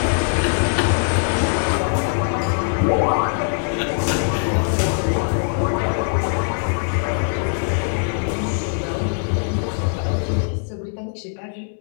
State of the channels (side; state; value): right; silent; digital silence